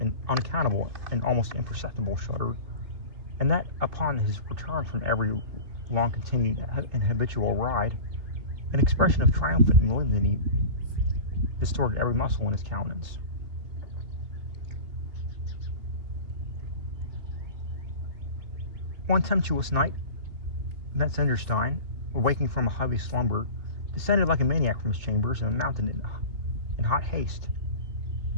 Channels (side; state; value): left; late; 2.8 ms